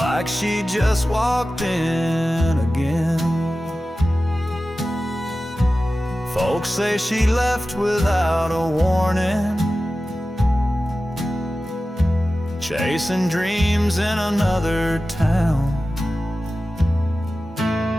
she just walked in again. Folks say she left without a warning, chasing dreams in another town.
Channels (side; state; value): both; normal; correlation 0.95